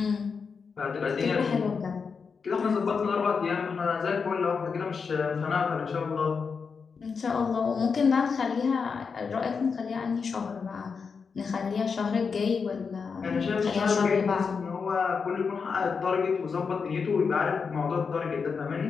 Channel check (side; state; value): right; quieter; 5.5 dB